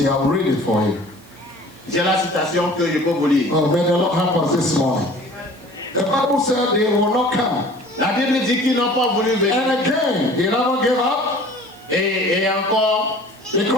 I'll read it for you. J'ai la citation que je peux vous lire. Oh, may the Lord help us this morning. The Bible said they will not come. La Bible dit qu'ils n'ont pas voulu venir. And again, they never gave up Et encore,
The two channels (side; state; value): right; noise; hiss, 28 dB below the sound